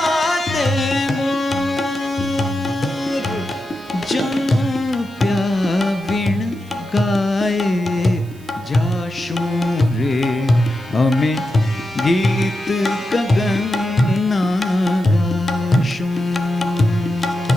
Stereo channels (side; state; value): right; noise; hiss, 26 dB below the sound